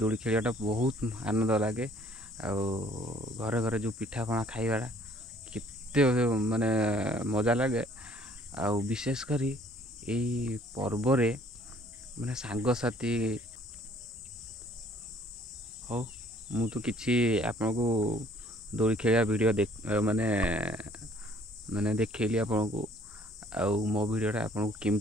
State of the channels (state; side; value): normal; both; correlation 0.59